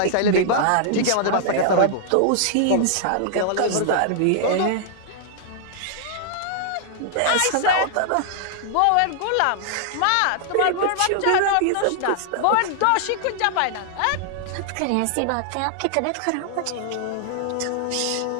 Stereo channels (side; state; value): both; different; correlation -0.01